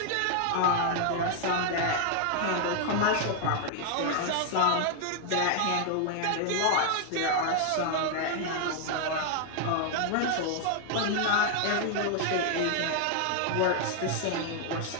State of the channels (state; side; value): different; both; correlation 0.00